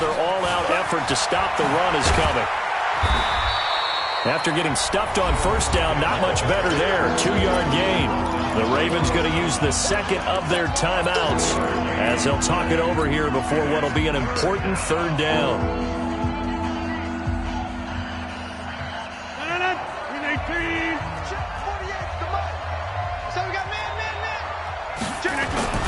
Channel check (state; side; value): identical; both; correlation 1.00